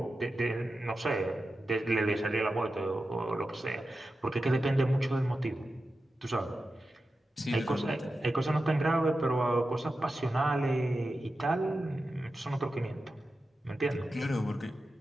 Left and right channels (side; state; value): both; normal; correlation 0.92